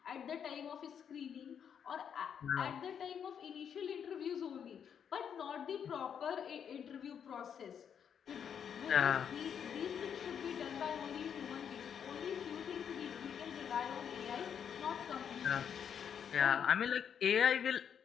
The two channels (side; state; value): right; quieter; 8.0 dB